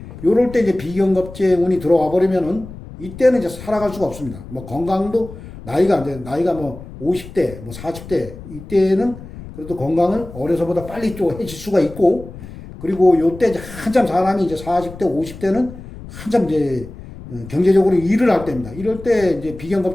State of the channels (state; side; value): noise; left; rumble, 15 dB below the sound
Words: 요럴 때 이제 비경겁제 운이 들어와 버리면은 이때는 이제 살아갈 수가 없습니다. 뭐 건강도 나이가 뭐 50대, 뭐 40대, 이때는 그래도 건강을 어려서보다 빨리 또 해칠 수가 있고, 그리고 요때 이제 한참 사람이 이제 40대, 50대는 한참 이제 경제적으로 일을 할 때입니다. 이럴 때 이제